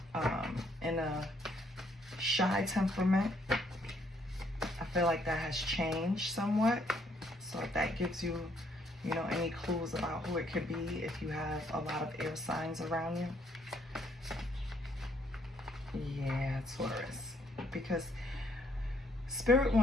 in a shy temperament. I feel like that has changed somewhat. So if that gives you, you know, any clues about who it could be, if you have a lot of air signs around you. Yeah, Taurus. Because Spirit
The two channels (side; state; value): both; normal; correlation 0.69